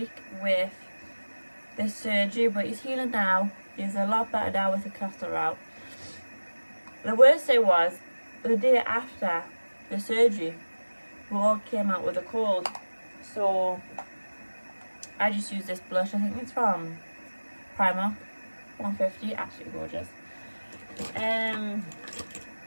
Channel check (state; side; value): inverted; both; correlation -1.00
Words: with this surgery, but he's healing now. He's a lot better now with the catheter out. The worst thing was, the day after the surgery, we all came out with a cold. So I just used this blush. I think it's from Primark, 150, absolutely gorgeous.